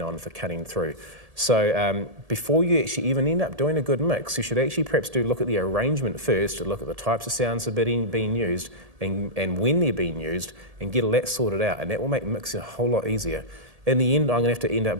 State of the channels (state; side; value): late; left; 1.7 ms